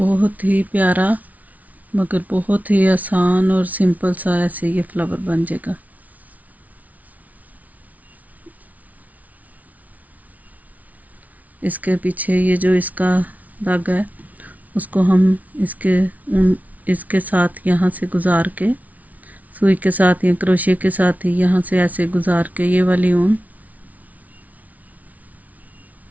ही प्यारा मगर बहुत ही आसान और सिंपल सा ऐसे ये फ्लावर बन जाएगा। इसके पीछे ये जो इसका धागा है उसको हम इसके साथ यहाँ से गुजार के सुई के साथ या क्रोशिया के साथ ही यहाँ से ऐसे गुजार के ये वाली ऊन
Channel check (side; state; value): left; late; 0.072 ms